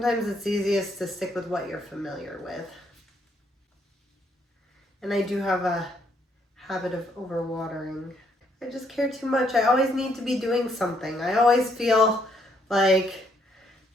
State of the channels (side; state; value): both; normal; correlation 0.71